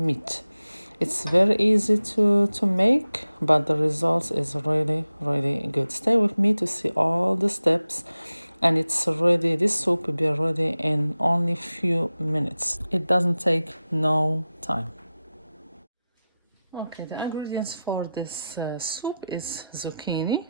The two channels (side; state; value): both; inverted; correlation -0.94